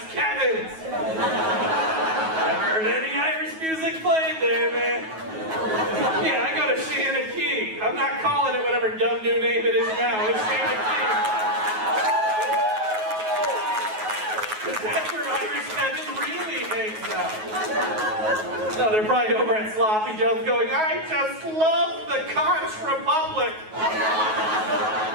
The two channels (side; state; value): left; late; 9.3 ms